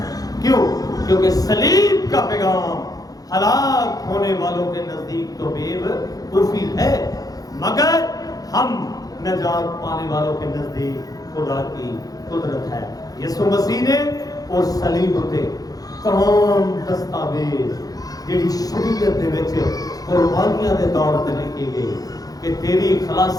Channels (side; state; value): right; late; 0.18 ms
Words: کیوں؟ کیونکہ صلیب کا پیغام ہلاک ہونے والوں کے نزدیک تو بے وقوفی ہے، مگر ہم نجات پانے والوں کے نزدیک خدا کی قدرت ہے۔ یسوع مسیح نے اس صلیب تے تمام دستاویز جڑی شریعت دے وچ قربانیاں دے طور تے لکھی گئی کہ تیری